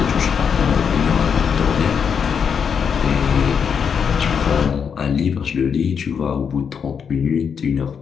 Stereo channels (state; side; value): quieter; right; 6.9 dB